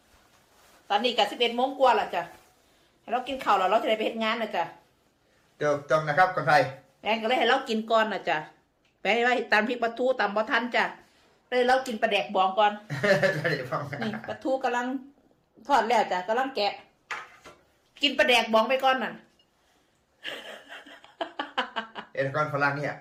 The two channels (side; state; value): both; identical; correlation 1.00